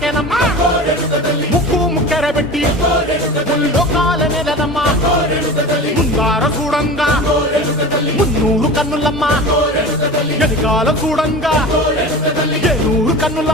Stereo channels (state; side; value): normal; both; correlation 0.33